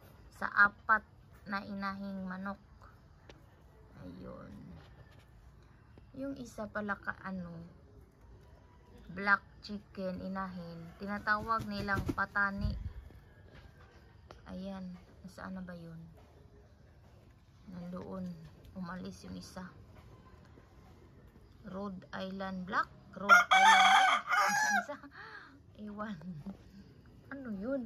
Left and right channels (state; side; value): identical; both; correlation 1.00